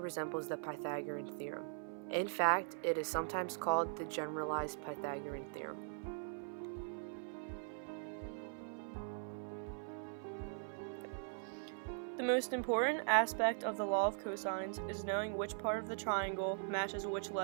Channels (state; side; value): silent; left; 50 dB below the other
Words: the Pythagorean theorem. In fact, it is sometimes called the generalized Pythagorean theorem. The most important aspect of the law of cosines is knowing which part of the triangle matches which